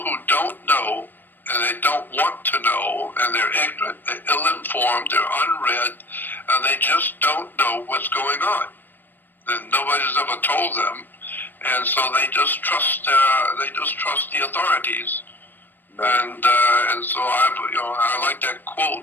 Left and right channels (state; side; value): late; right; 0.092 ms